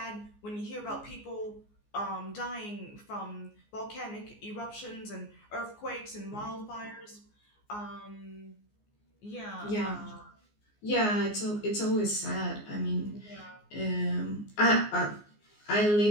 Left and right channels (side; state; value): right; late; 14 ms